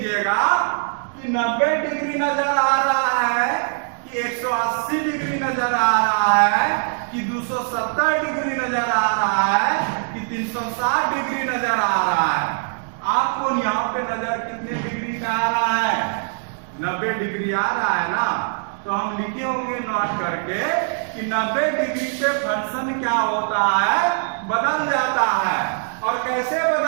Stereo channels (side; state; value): left; silent; digital silence